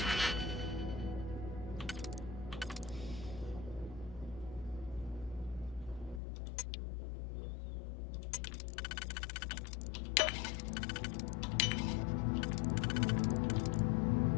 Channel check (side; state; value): right; drops out; at 6.2 s